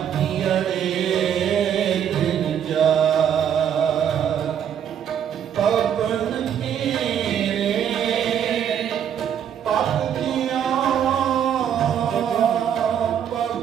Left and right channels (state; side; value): quieter; left; 9.0 dB